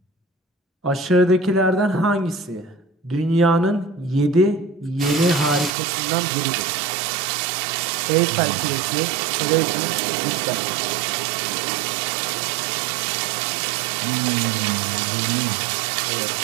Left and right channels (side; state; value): left; drops out; at 5.7 s